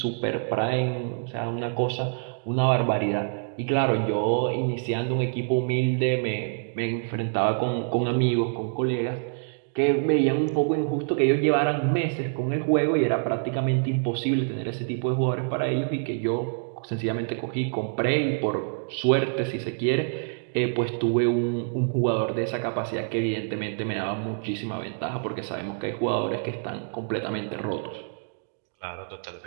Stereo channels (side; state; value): left; silent; digital silence